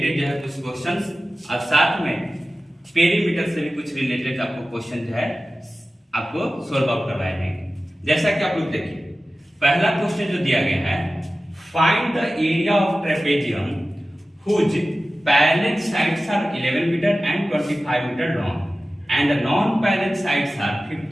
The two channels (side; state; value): both; normal; correlation 0.95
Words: जो है कुछ क्वेश्चंस और साथ में पेरीमीटर से भी कुछ रिलेटेड आपको क्वेश्चन जो है आपको सोल्व आउट करवाए जाएंगे। जैसा कि आप लोग देखिए, पहला क्वेश्चन जो दिया गया है, find the area of trapezium whose parallel sides are 11 metre and 25 metre long and the non-parallel sides are